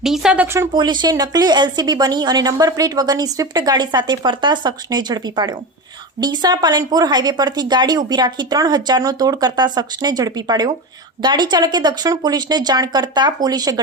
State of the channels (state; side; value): normal; both; correlation 0.23